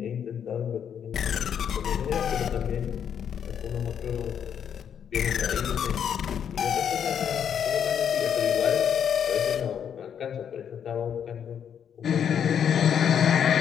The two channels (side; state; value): right; quieter; 8.4 dB